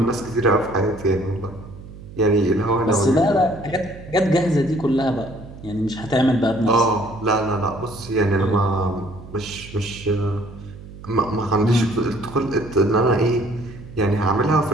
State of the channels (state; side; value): noise; right; hum, 16 dB below the sound